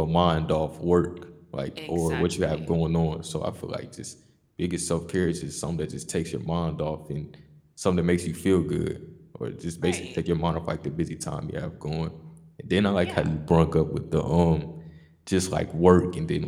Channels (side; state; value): both; identical; correlation 1.00